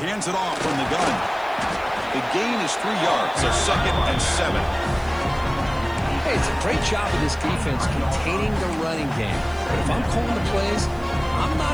hands it off from the gun. The gain is 3 yards, so 2nd and 7. Hey, it's a great job of this defense containing the running game. But if I'm calling the plays, I'm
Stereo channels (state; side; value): noise; right; hiss, 27 dB below the sound